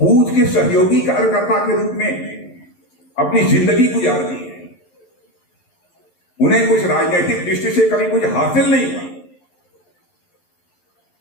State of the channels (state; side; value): late; right; 11 ms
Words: के सहयोगी कार्यकर्ता के रूप में अपनी जिंदगी गुजार दी है। उन्हें कुछ राजनीतिक दृष्टि से कभी कुछ हासिल नहीं हुआ,